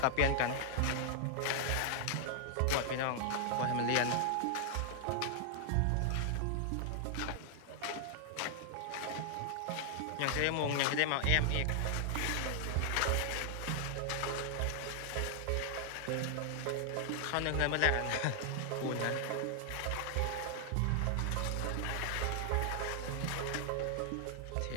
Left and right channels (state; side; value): different; both; correlation 0.00